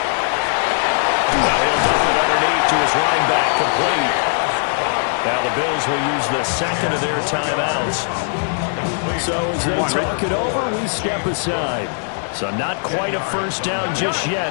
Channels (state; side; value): silent; right; digital silence